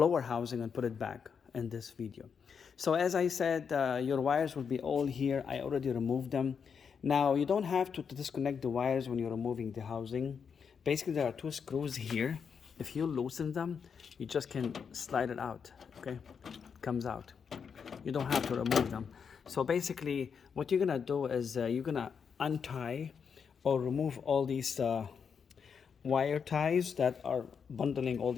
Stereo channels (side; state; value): right; quieter; 6.5 dB